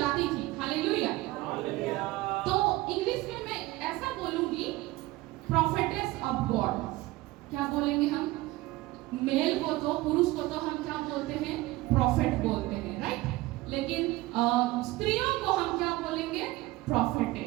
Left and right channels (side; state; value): left; quieter; 19.2 dB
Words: थी। हालेलुया। तो इंग्लिश में मैं ऐसा बोलूंगी, प्रोफेटेस ऑफ गॉड। क्या बोलेंगे हम? मेल को तो, पुरुष को तो हम क्या बोलते हैं? प्रॉफिट बोलते हैं, राइट? लेकिन स्त्रियों को हम क्या बोलेंगे?